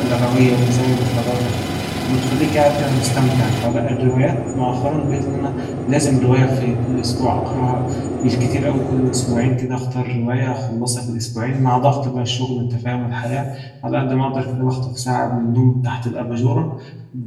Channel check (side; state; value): both; identical; correlation 1.00